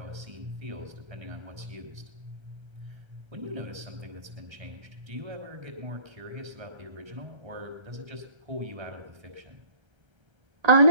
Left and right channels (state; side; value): late; left; 1.3 ms